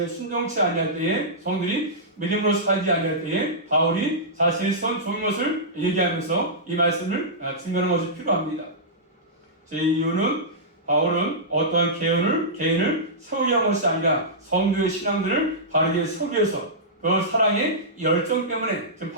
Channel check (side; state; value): both; normal; correlation -0.15